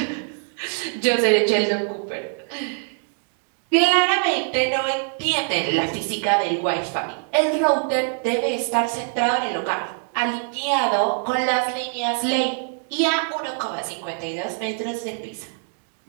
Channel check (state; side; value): silent; left; 56 dB below the other